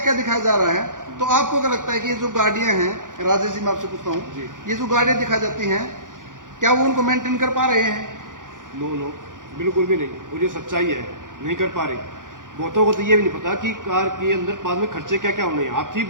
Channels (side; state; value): left; late; 0.88 ms